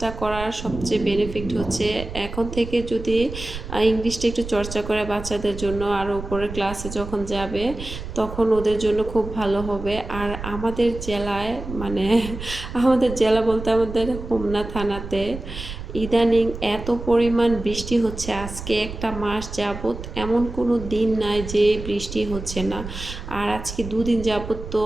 করার সবচেয়ে বেনিফিট হচ্ছে এখন থেকে যদি ইংলিশটা একটু চর্চা করে বাচ্চাদের জন্য, আর উপরের ক্লাসে যখন যাবে তখন ওদের জন্য খুব ভালো হবে। আর আমাদের জেলায় মানে আমাদের জেলা বলতে আমাদের হোমনা থানাতে ইদানিং এত পরিমাণ বৃষ্টি হচ্ছে, আজকে একটা মাস যাবত এমন কোনো দিন নাই যে বৃষ্টি হচ্ছে না। আর আজকে 2 দিন যাবত তো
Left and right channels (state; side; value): noise; right; rumble, 10 dB below the sound